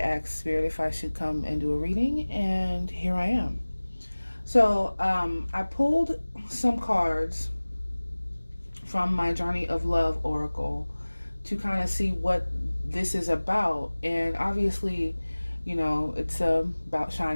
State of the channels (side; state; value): both; inverted; correlation -1.00